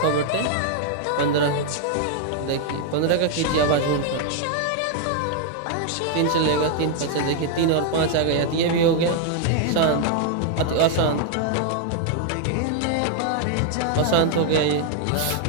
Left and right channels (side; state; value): both; different; correlation 0.00